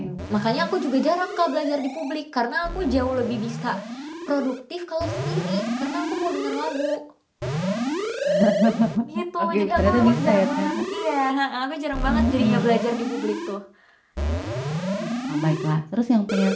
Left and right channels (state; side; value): identical; both; correlation 1.00